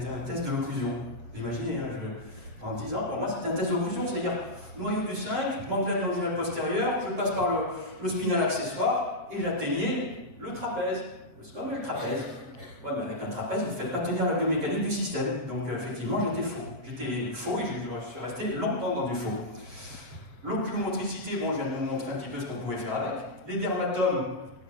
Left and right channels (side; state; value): left; late; 7.9 ms